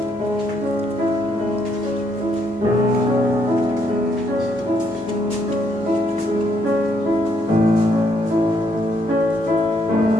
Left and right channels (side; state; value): both; normal; correlation 0.72